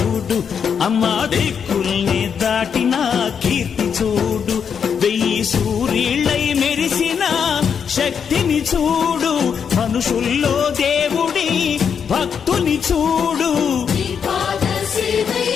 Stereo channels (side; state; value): right; quieter; 7.1 dB